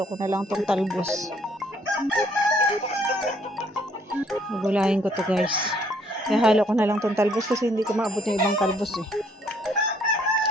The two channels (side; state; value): both; normal; correlation 0.65